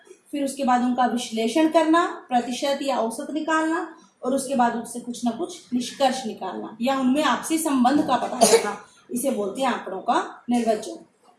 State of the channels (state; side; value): identical; both; correlation 1.00